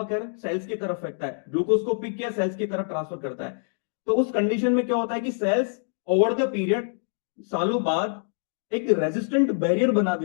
सेल्स की तरफ फेंकता है, ग्लूकोज को पिक किया सेल्स की तरफ ट्रांसफर करता है। तो उस कंडीशन में क्या होता है कि सेल्स ओवर द पीरियड, सालों बाद, एक रेजिस्टेंट बैरियर बना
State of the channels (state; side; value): silent; right; digital silence